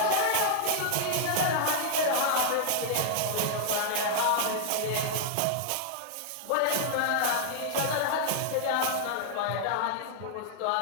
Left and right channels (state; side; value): different; both; correlation -0.01